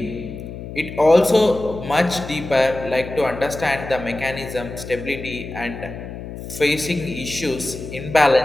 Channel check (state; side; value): noise; left; hum, 10 dB below the sound